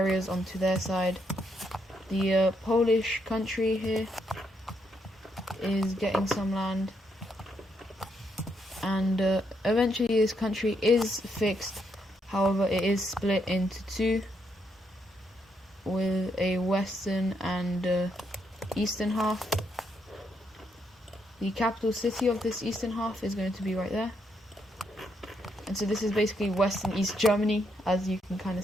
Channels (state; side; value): normal; both; correlation 0.77